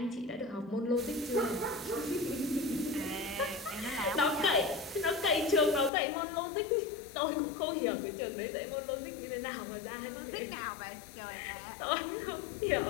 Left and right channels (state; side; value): drops out; right; at 5.9 s